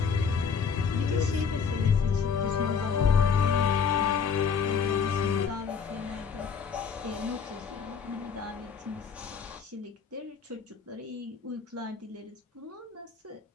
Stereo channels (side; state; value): right; quieter; 6.3 dB